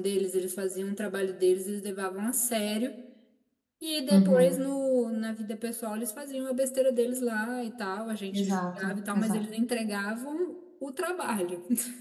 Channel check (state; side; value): identical; both; correlation 1.00